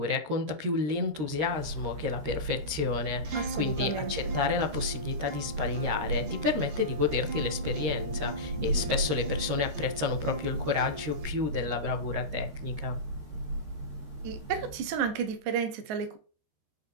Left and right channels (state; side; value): late; left; 13 ms